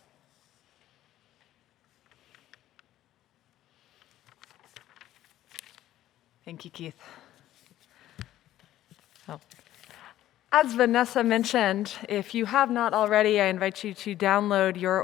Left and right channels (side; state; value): right; quieter; 13.5 dB